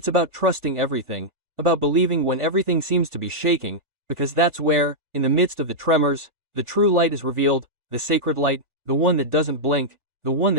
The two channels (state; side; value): late; left; 1.4 ms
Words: about trusting everything, about believing when everything seems to be shaking, because that's where, in the midst of the tremors, the true light is revealed, the sacred light, the one that doesn't blink, the one